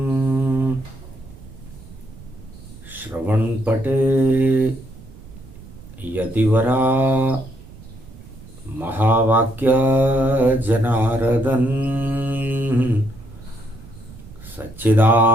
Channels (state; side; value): noise; right; rumble, 18 dB below the sound